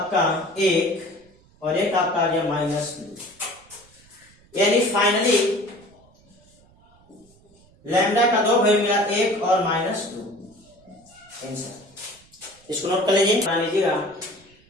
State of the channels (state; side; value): noise; right; rumble, 29 dB below the sound